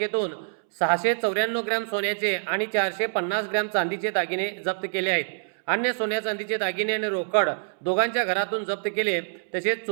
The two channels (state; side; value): silent; left; 61 dB below the other